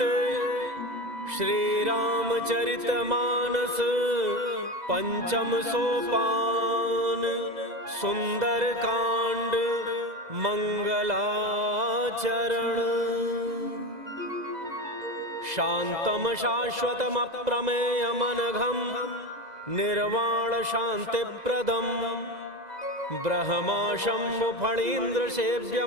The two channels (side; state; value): left; late; 2.0 ms